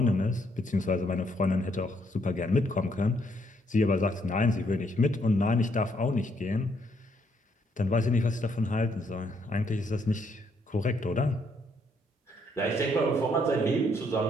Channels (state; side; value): normal; both; correlation 0.71